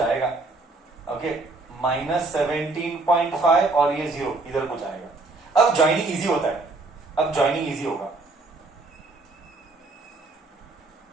ओके, -17.5 और ये 0 इधर कुछ आएगा. अब ज्वाइनिंग इजी होता है. अब ज्वाइनिंग इजी होगा.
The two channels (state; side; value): quieter; left; 3.4 dB